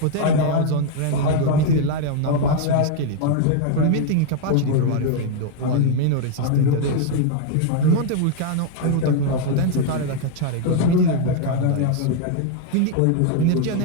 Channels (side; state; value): both; different; correlation 0.00